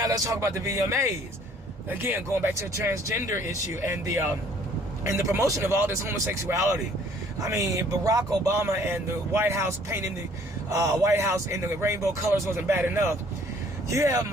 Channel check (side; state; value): both; normal; correlation 0.58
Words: let's talk about the VMAs. Again, going back to the transgender issue and the promotion of all this homosexuality. I mean, Barack Obama and the White House painting the White House in the rainbow colors wasn't bad enough. You have